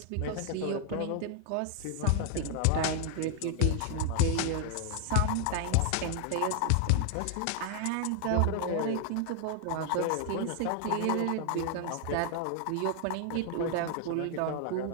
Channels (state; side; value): different; both; correlation 0.00